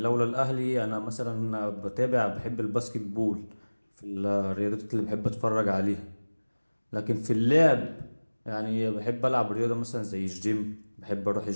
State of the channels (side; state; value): both; inverted; correlation -1.00